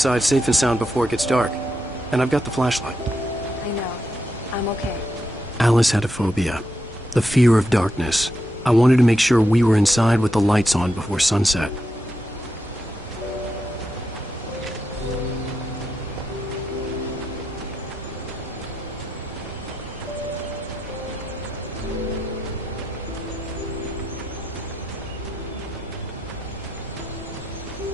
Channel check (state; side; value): normal; both; correlation 0.84